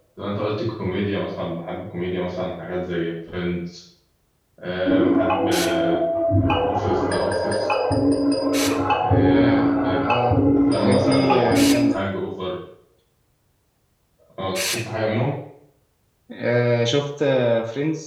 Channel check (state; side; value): identical; both; correlation 1.00